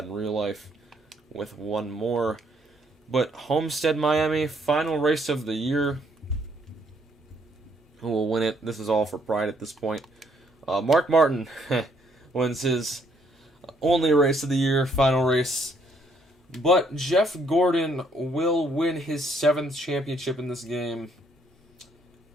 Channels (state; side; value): normal; both; correlation 0.69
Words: in real life, with 1 more. But Homestead, Miami, final race of the year. Who will win it? This is all for pride at this point. Mark Martin wins his only race of the year, final race. But Jeff Gordon will win his 7th championship in this game.